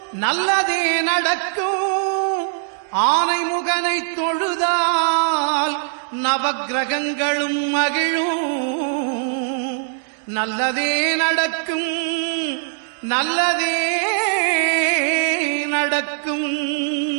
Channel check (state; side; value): silent; left; 64 dB below the other